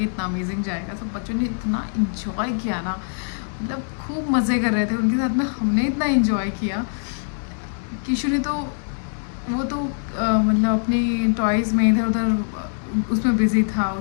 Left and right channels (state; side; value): silent; right; digital silence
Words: इतना अमेजिंग जाएगा। सब बच्चों ने इतना इन्जॉय किया ना, मतलब खूब मज़े कर रहे थे उनके साथ में। हमने इतना इन्जॉय किया। किशु ने तो वो तो मतलब अपनी टॉयज़ में इधर उधर उसमें बिज़ी था,